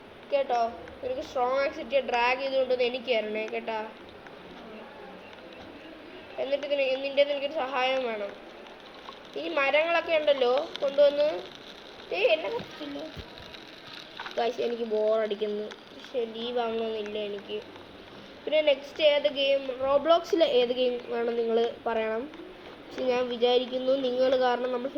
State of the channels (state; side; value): identical; both; correlation 1.00